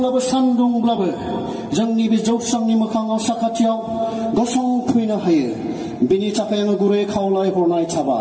सान्दुंब्लाबो जोंनि बे जौस्रांनि मोखाङाव साखाथियाव गसंफैनो हायो। बिनि थाखाय आङो गुरै खावलायहरनाय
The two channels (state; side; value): identical; both; correlation 1.00